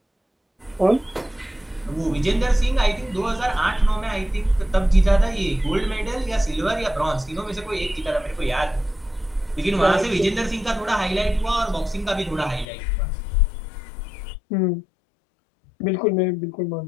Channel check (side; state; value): right; drops out; at 12.7 s